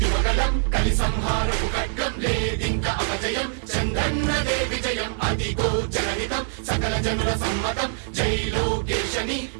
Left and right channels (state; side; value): silent; left; digital silence